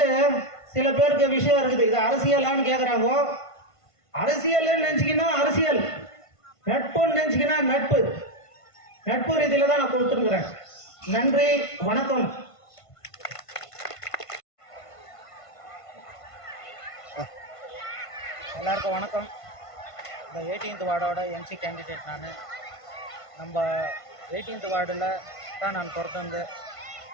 சில பேருக்கு விஷயம் இருக்குது. இது அரசியலான்னு கேட்குறாங்க. அரசியல் நினைச்சிக்கினா அரசியல், நட்புன்னு நினைச்சிக்கினா நட்பு. நட்பு ரீதியில தான் நான் கொடுத்துருக்கிறேன். நன்றி, வணக்கம். எல்லாருக்கும் வணக்கம். இந்த 18th வார்டோட எம்சி கேண்டிடேட் நான். நம்ம 18th வார்டில் தான் நான் பிறந்து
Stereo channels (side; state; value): right; late; 1.5 ms